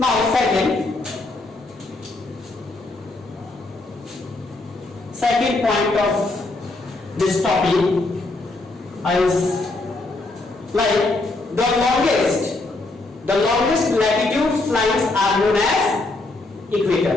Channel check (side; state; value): right; quieter; 3.1 dB